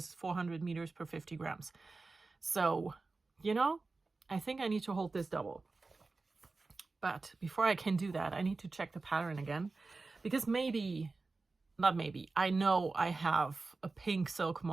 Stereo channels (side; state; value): left; quieter; 3.7 dB